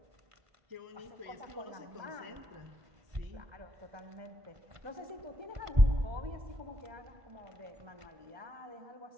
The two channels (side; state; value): left; late; 1.5 ms